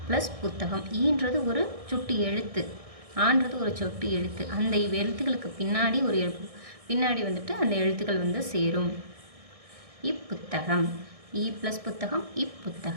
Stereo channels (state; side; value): late; left; 1.6 ms